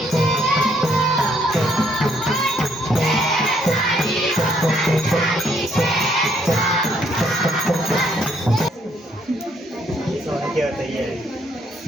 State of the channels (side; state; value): both; normal; correlation 0.69